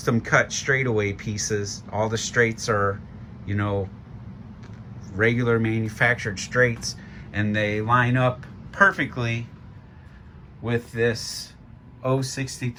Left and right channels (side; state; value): both; identical; correlation 1.00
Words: cut straightaway pieces. All the straights are, regular manufactured straights, and they line up perfectly with this